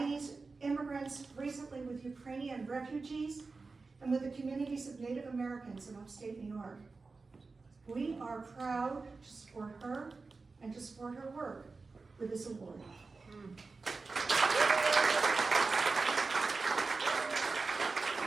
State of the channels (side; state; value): left; quieter; 4.1 dB